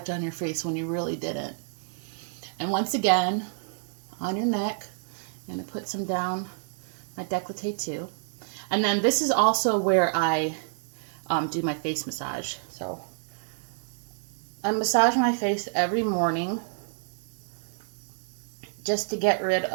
on your face when you really didn't. And once again, on your neck, I'm going to put some down my décolleté too. And then this is also where I do my face massage. So I massage my face every morning just to get rid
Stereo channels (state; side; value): silent; left; digital silence